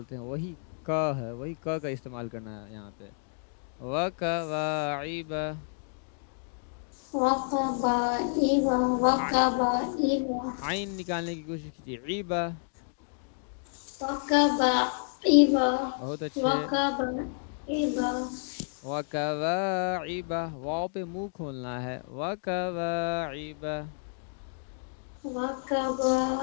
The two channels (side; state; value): right; silent; 58 dB below the other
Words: ہیں. وہی ک ہے وہی ک کا استعمال کرنا ہے یہاں پہ. وَكَوَاعِبَ وَقَبَائِبَ عین نکالنے کی کوشش کیجیے. عیبہ وَقَبَائِبَ بہت اچھے. وَقَبَائِبَ وَكَوَاعِبَ واو پہ منہ کھولنا ہے. وَكَوَاعِبَ